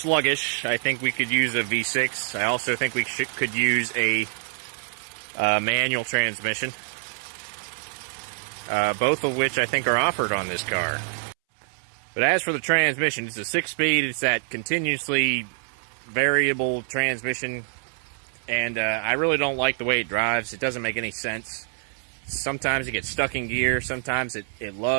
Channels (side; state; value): left; silent; 61 dB below the other